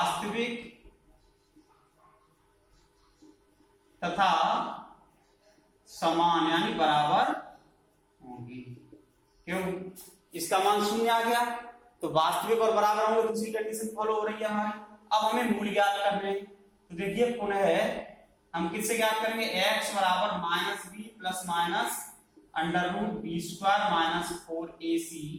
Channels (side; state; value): both; identical; correlation 1.00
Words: तथा समान यानी बराबर होंगे। क्यों, इसका मान 0 आ गया तो वास्तविक और बराबर होंगे, दूसरी कंडीशन फॉलो हो रही है हमारी। अब हमें मूल ज्ञात करने हैं, तो देखिए पुनः हम किससे ज्ञात करेंगे, x बराबर -b plus minus √b² minus 4ac